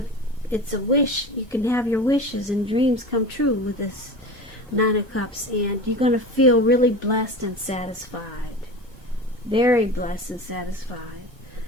It's a wish. You can have your wishes and dreams come true with this Nine of Cups. And you're going to feel really blessed and satisfied. Very blessed and satisfied.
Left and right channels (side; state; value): both; normal; correlation 0.32